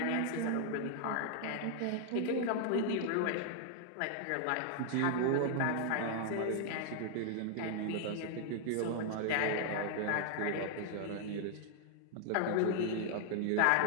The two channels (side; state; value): both; different; correlation 0.00